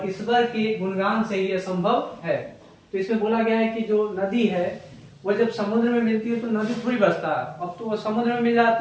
ईश्वर के गुणगान से ही यह संभव है। तो इसमें बोला गया है कि जो नदी है वह जब समुद्र में मिलती है तो नदी थोड़ी बसता है, अब तो वह समुद्र में मिल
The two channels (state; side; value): identical; both; correlation 1.00